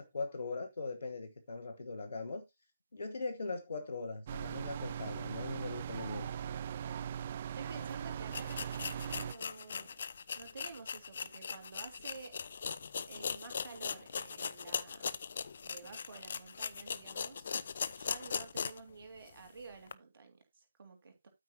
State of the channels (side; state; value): both; inverted; correlation -0.77